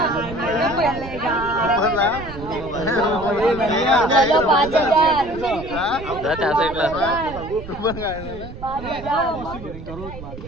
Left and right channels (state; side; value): noise; right; rumble, 12 dB below the sound